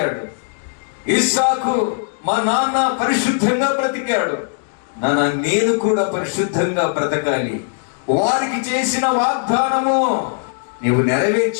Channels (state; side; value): silent; right; digital silence